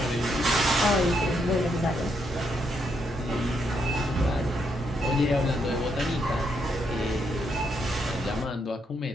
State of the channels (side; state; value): both; normal; correlation 0.77